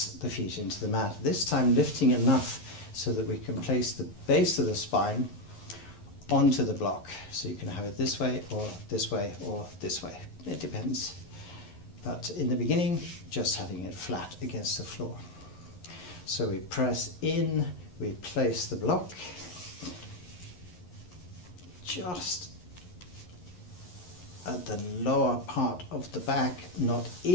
the feet into the mat, this time lifting enough so that we can place the base of the spine onto the block. So you can have it this way or this way or this way. It depends. But in the beginning, just having it flat against the floor. So we press in, we place the block just at the lower part of the back, not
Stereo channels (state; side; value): late; right; 11 ms